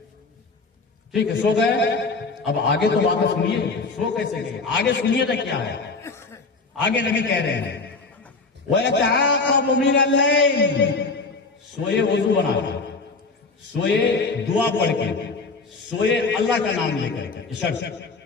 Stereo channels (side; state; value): right; quieter; 4.0 dB